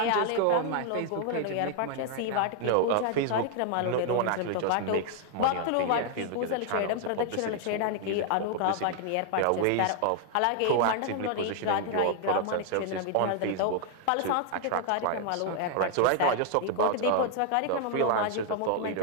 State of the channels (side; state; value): both; different; correlation 0.00